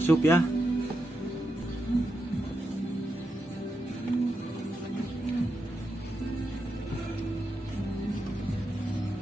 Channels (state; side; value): normal; both; correlation 0.86